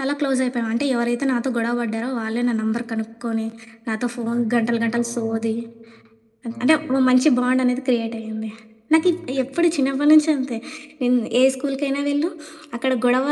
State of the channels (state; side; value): identical; both; correlation 1.00